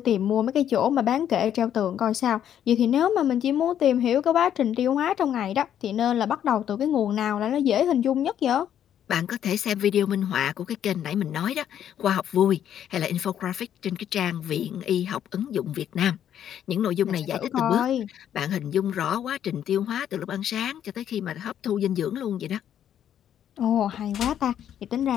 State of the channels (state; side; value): quieter; right; 10.0 dB